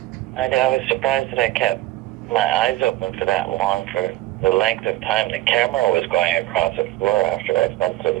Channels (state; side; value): quieter; left; 16.3 dB